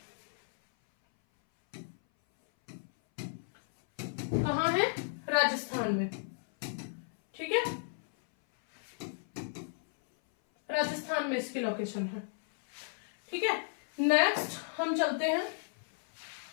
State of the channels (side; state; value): right; silent; 55 dB below the other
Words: कहां है? राजस्थान में। ठीक है, राजस्थान में इसकी लोकेशन है। ठीक है, नेक्स्ट हम चलते हैं।